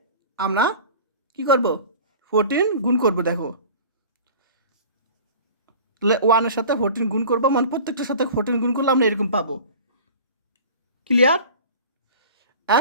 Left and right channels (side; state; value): both; inverted; correlation -0.41